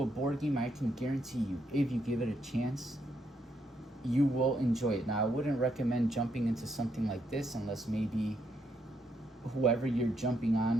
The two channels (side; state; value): both; normal; correlation 0.76